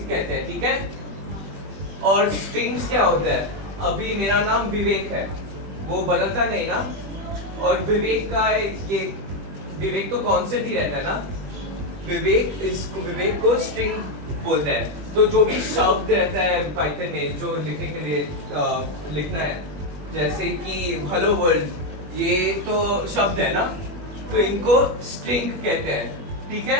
कहते हैं, ठीक है। और स्ट्रिंग्स क्या होता है, अभी मेरा नाम विवेक है, वो बदलता नहीं ना, और विवेक का ये विवेक तो कांस्टेंट ही रहता है ना, विवेक को स्ट्रिंग बोलते हैं। तो जो भी शब्द रहता है पाइथन में जो लिखने के लिए लिखना है, जैसे कि हेलो वर्ल्ड, ये तो शब्द है ना, तो इनको स्ट्रिंग कहते हैं, ठीक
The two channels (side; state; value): left; late; 20 ms